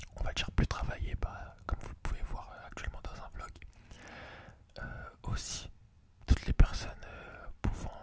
on va dire plus travaillée, comme vous le pouvez voir actuellement dans un vlog. Aussi toutes les personnes pouvant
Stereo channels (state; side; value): identical; both; correlation 1.00